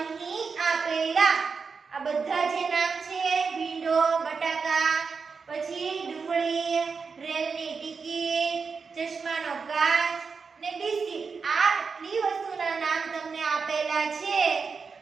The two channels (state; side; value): quieter; left; 5.2 dB